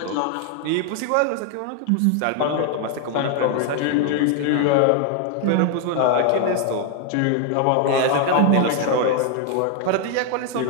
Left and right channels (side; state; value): both; different; correlation 0.00